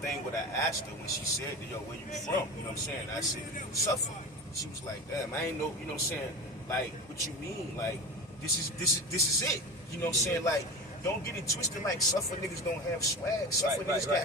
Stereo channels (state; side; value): normal; both; correlation 0.30